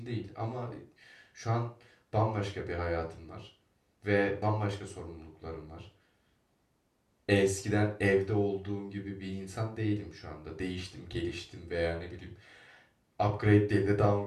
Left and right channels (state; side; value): identical; both; correlation 1.00